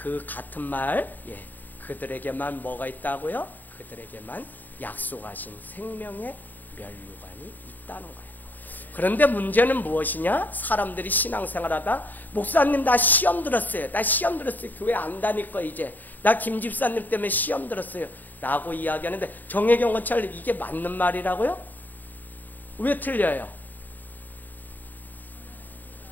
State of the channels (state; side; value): late; right; 0.086 ms